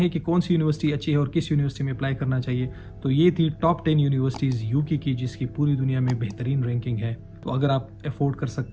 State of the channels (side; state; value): both; identical; correlation 1.00